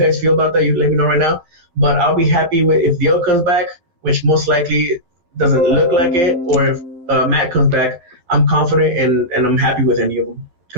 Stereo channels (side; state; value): left; late; 12 ms